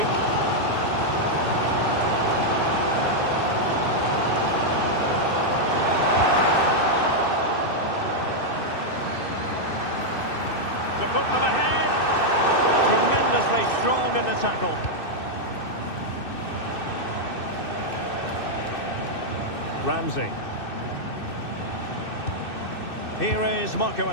To put them ahead. Tremendously strong in the tackle. Ramsey. Here is Marco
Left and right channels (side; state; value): right; late; 2.6 ms